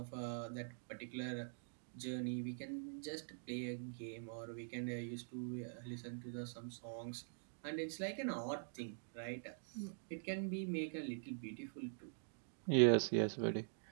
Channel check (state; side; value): silent; left; digital silence